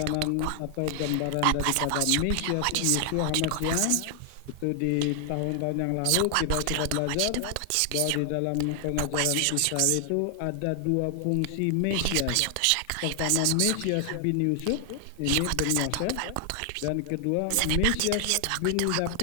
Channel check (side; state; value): both; different; correlation 0.00